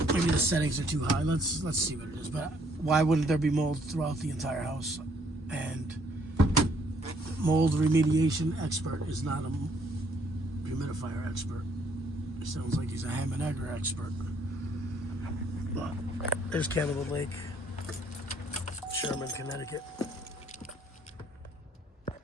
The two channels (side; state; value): both; normal; correlation 0.66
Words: Maybe the settings are too high. Let's see what it is. But why wouldn't there be mold throughout the entire house? And mold remediation expert is not a humidifier expert. It sounds like he's a ham and egger expert. But there's Cannibal Lake, Sherman, Connecticut.